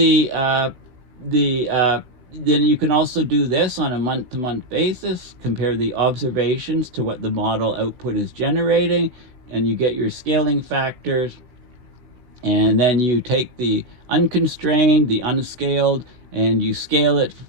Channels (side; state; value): left; late; 16 ms